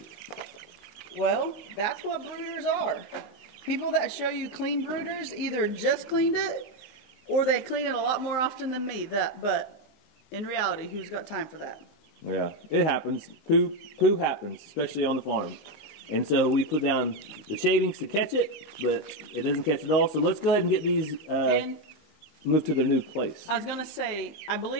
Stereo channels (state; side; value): late; right; 19 ms